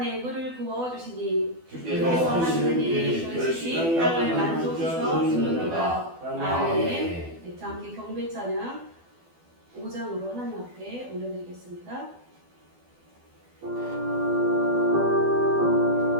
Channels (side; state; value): left; late; 12 ms